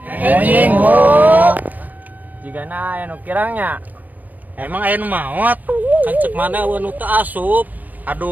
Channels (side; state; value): left; late; 0.083 ms